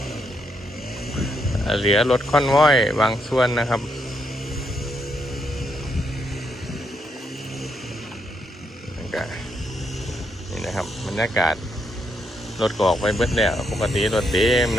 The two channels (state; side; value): normal; both; correlation 0.78